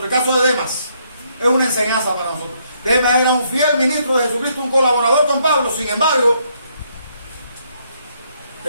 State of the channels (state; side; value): inverted; both; correlation -0.72